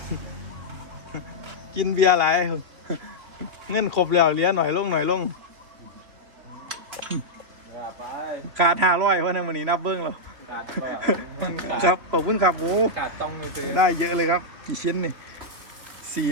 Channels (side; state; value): left; late; 3.2 ms